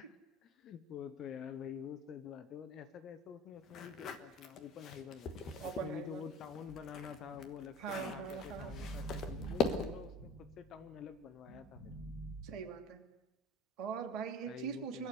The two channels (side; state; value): both; normal; correlation 0.41